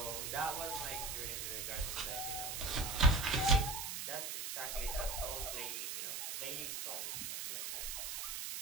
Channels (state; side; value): noise; right; hiss, 3 dB below the sound